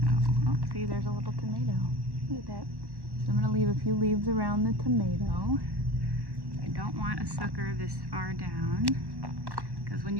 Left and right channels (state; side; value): late; left; 1.1 ms